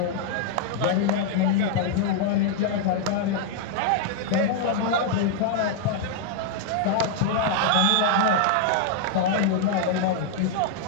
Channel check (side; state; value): both; different; correlation 0.00